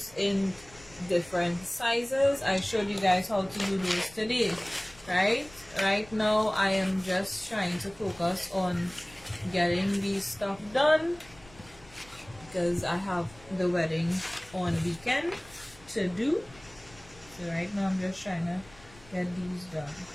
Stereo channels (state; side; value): noise; left; rumble, 23 dB below the sound